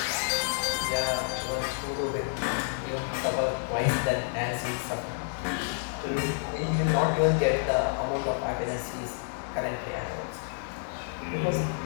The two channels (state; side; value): silent; right; digital silence